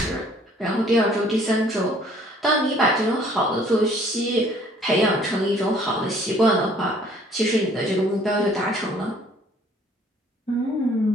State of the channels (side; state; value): both; normal; correlation 0.58